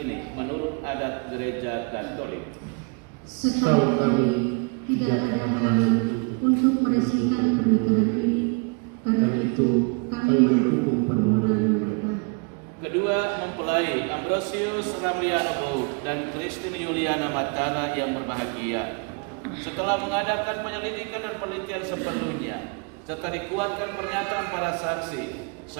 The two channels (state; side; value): quieter; left; 33.9 dB